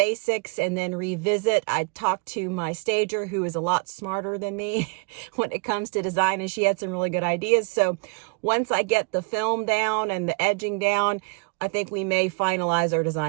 and then revisit. I talked to my stager who is a lot smarter than me when it comes to design, and she had some really good ideas. So once I get the film down and the edging down, I think we may finalize our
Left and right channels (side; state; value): left; quieter; 33.5 dB